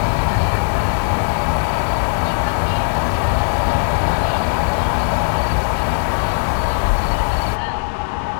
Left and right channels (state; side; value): silent; right; digital silence